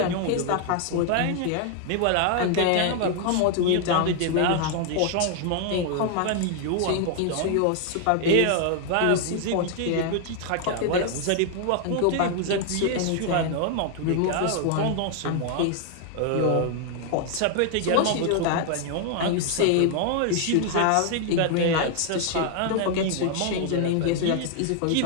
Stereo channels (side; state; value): both; different; correlation 0.00